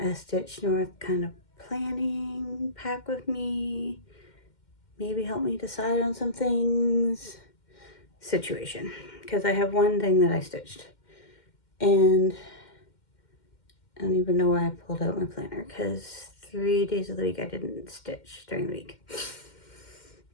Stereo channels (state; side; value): late; right; 2.1 ms